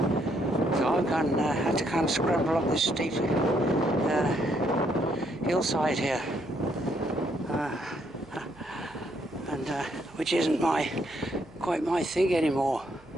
So I've had to kind of scramble up this steep hillside here. Which isn't quite my thing anymore.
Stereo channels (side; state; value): right; noise; hum, 26 dB below the sound